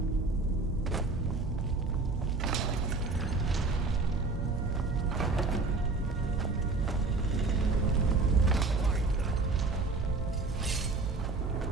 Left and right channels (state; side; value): quieter; left; 3.7 dB